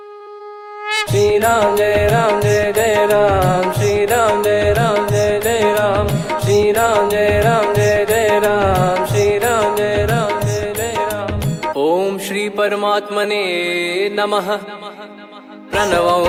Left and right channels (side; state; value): both; identical; correlation 1.00